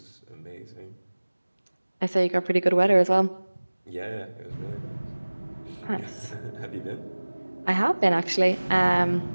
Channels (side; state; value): both; inverted; correlation -1.00